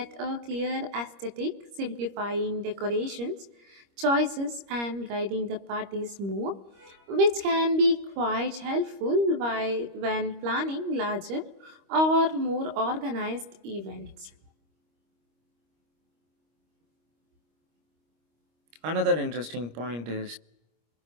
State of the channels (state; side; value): late; left; 25 ms